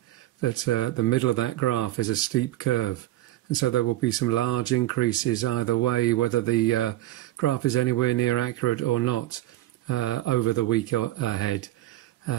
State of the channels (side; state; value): left; quieter; 15.2 dB